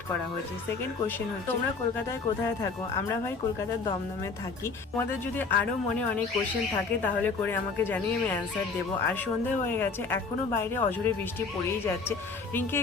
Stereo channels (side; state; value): right; quieter; 4.4 dB